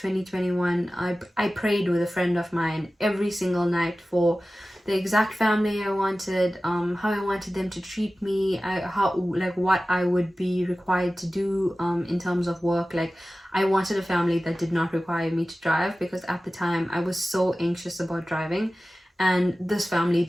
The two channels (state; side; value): normal; both; correlation 0.96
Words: I prayed with a friend of mine every single night for the exact family I wanted, how I wanted them to treat me, what I would be required to do in terms of work. Like, I wanted a family that did not require me to drive because at the time I was so anxious about driving, and this family